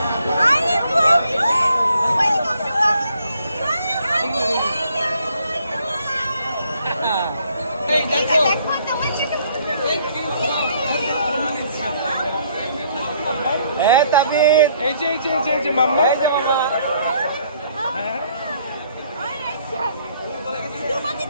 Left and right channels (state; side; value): inverted; both; correlation -0.65